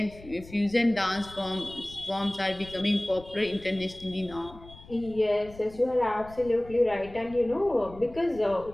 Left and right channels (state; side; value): noise; left; rumble, 19 dB below the sound